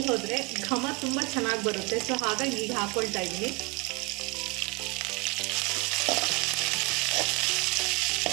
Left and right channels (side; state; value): left; quieter; 27.0 dB